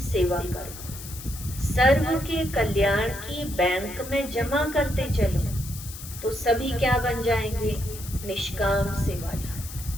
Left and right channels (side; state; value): left; noise; hiss, 12 dB below the sound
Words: सेवा करो, सर्व के कल्याण की बैंक में जमा करते चलो, तो सभी क्या बन जाएंगे? निष्काम